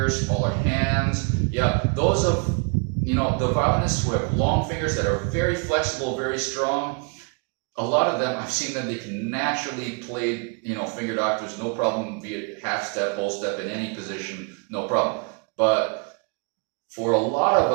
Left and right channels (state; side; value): quieter; left; 35.7 dB